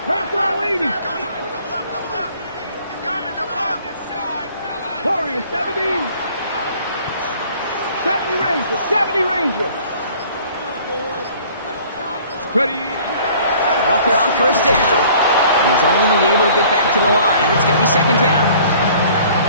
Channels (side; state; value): both; inverted; correlation -0.53